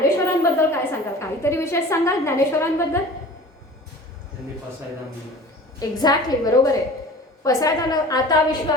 काय सांगाल? काहीतरी विशेष सांगाल ज्ञानेश्वरांबद्दल? एक्झॅक्टली, बरोबर आहे. पसायदान आता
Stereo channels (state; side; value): normal; both; correlation 0.41